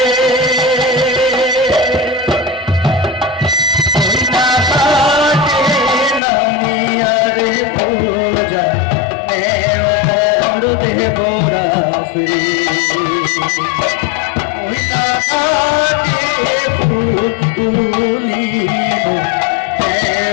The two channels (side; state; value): right; drops out; at 6.2 s